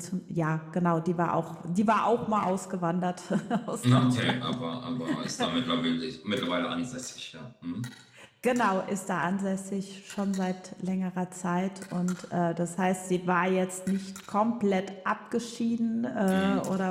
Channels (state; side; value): identical; both; correlation 1.00